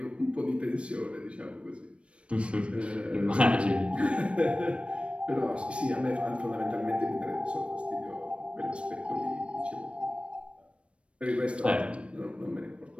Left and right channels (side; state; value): left; late; 0.060 ms